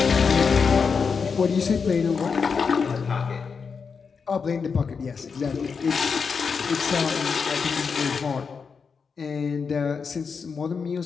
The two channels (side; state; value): right; quieter; 5.6 dB